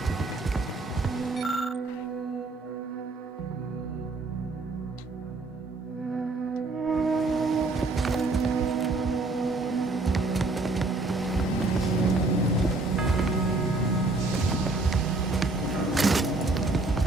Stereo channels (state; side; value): quieter; left; 3.2 dB